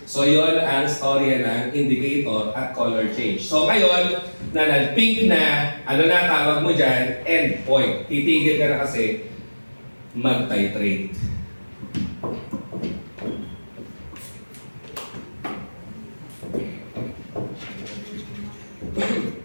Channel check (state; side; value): inverted; both; correlation -1.00